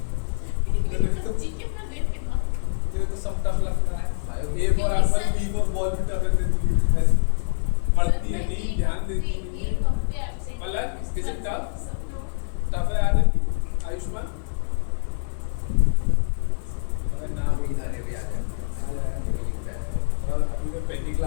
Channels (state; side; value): silent; right; digital silence